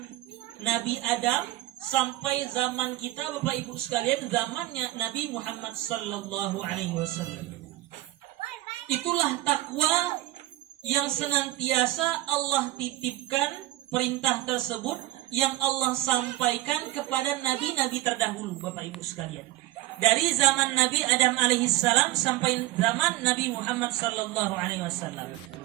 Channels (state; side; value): quieter; left; 16.6 dB